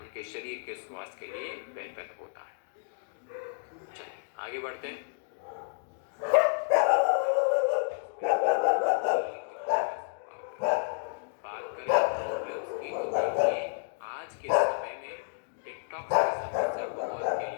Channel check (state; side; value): silent; right; digital silence